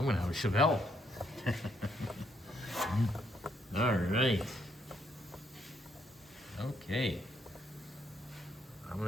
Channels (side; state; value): both; normal; correlation 0.73